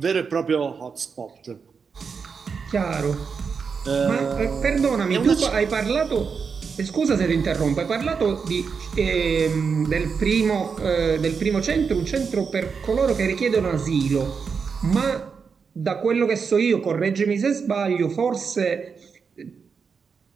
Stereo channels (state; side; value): quieter; left; 5.7 dB